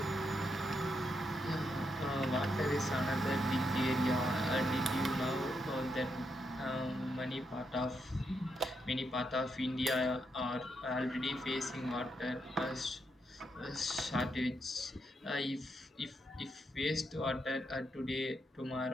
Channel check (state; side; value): normal; both; correlation 0.81